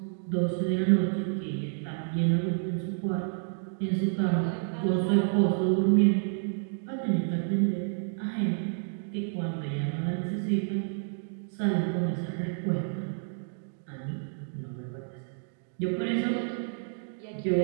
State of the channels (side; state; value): left; silent; digital silence